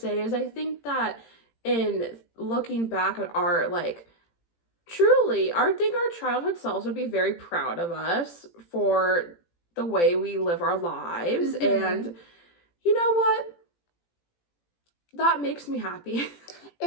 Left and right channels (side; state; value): right; late; 18 ms